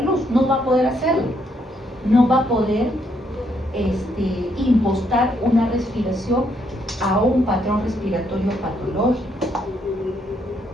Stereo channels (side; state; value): both; normal; correlation 0.73